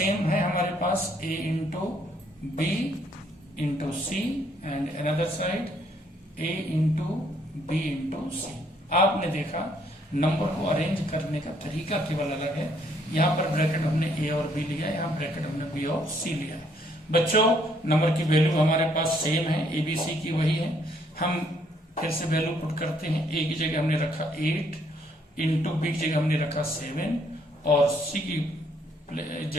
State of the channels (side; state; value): both; normal; correlation 0.68